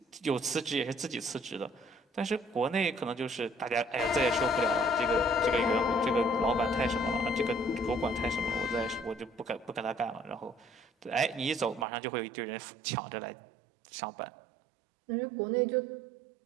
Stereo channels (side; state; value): left; drops out; at 11.9 s